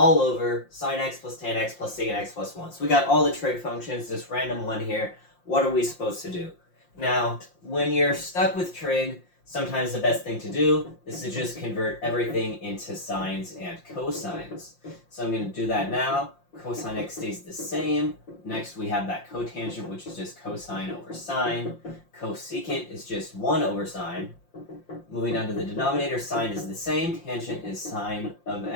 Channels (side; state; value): right; late; 5.7 ms